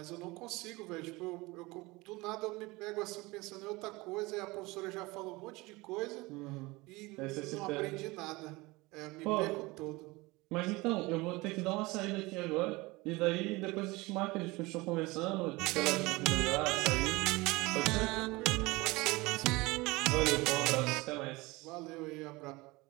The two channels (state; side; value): quieter; left; 22.7 dB